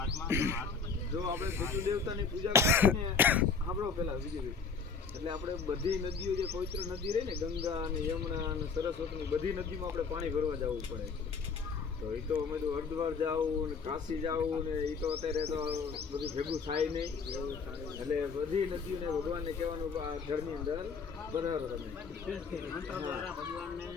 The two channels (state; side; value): quieter; right; 5.3 dB